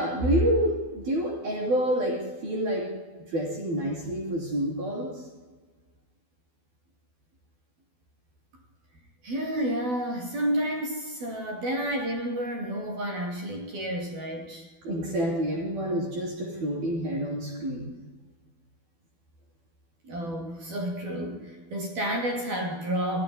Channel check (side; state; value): left; late; 12 ms